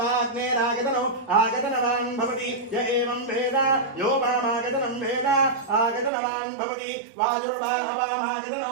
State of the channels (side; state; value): left; drops out; at 6.1 s